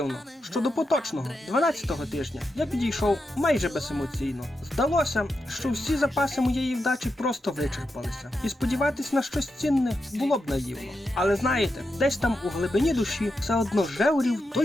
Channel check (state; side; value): normal; both; correlation 0.87